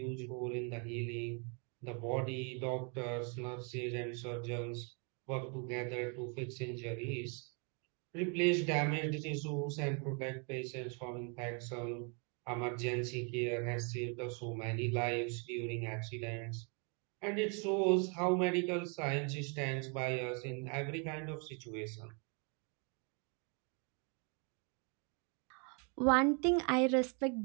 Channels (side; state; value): left; quieter; 36.6 dB